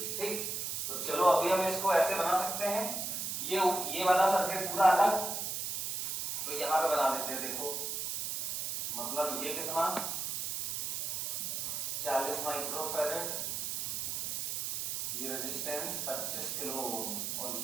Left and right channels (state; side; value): noise; right; hiss, 2 dB below the sound